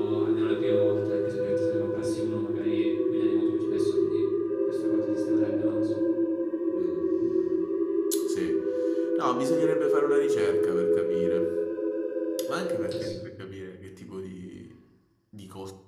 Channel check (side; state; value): both; identical; correlation 1.00